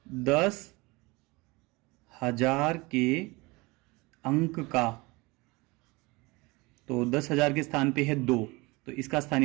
10,000 के अंक का, तो 10,000 के स्थान पे है 2 तो इसका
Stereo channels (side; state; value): left; quieter; 24.2 dB